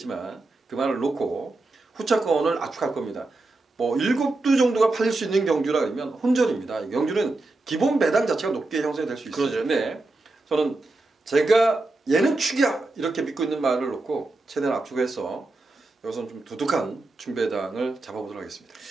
그 말을 놓고 후차권을 압축할 겁니다. 뭐 7두 정도가 팔릴 수 있는 경주라 그러면 혼전입니다. 이 경주는 기본 배당 자체가 높게 형성이 될 수 있어요. 그러죠. 근데 저는 제가 얘는 축이야 이렇게 믿고 있는 말을 놓고 최대한 압축해서 여기서는 좀 두둑한 중배당을 잡아보도록 하겠습니다.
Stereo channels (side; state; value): left; quieter; 3.1 dB